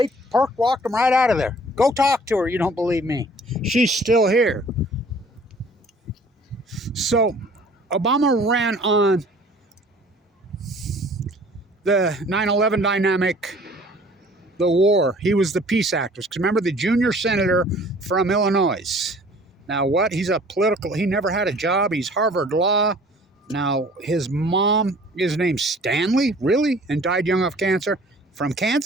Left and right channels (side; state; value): both; normal; correlation 0.52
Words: walked them right out of there. Go talk to her. You don't believe me. She's still here. So Obama ran on the 9/11 dynamic, the war. He was the peace activist. Because remember, the junior senator from Illinois. Now what? He never had a job. He's Harvard Law. Now his mom is named Stanley, really? And died young of cancer. From